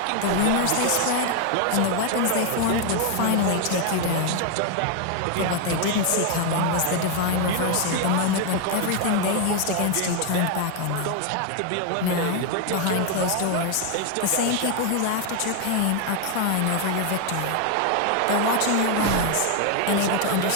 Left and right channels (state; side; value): different; both; correlation 0.01